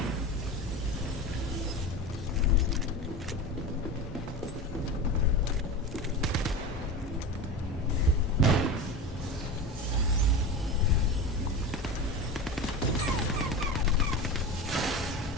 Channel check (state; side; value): normal; both; correlation 0.27